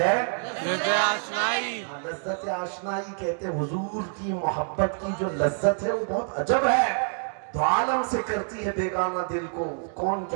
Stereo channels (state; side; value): silent; left; 55 dB below the other